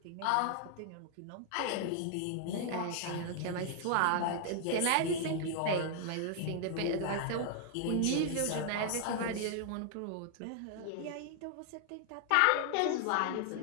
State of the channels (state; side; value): different; both; correlation 0.00